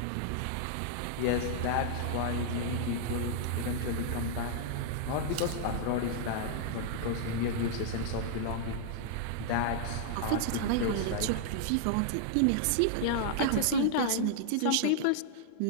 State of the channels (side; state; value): both; different; correlation -0.01